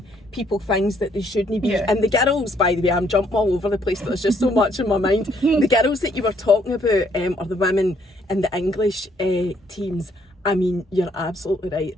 people things that they shouldn't be. And the girls, by the way, I'm jumping all over the place, but there's just so much in my mind. The girls that you were talking about, or the women in the English teams, I mean, you're absolutely right.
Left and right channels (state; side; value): normal; both; correlation 0.68